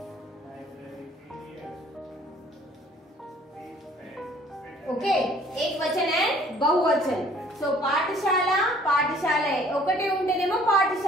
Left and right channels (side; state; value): both; normal; correlation 0.56